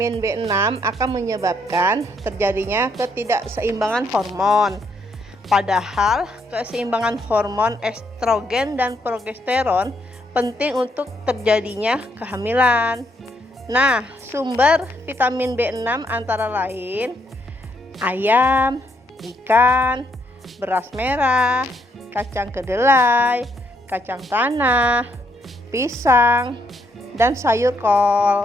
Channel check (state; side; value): normal; both; correlation 0.73